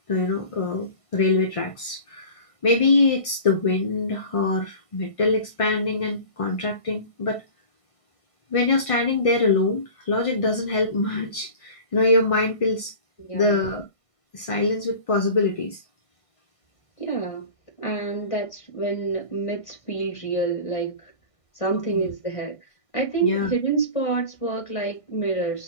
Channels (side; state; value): right; late; 1.6 ms